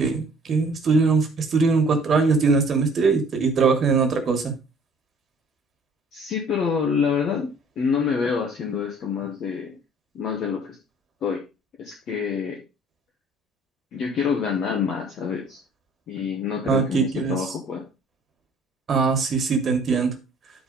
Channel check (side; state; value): both; normal; correlation 0.55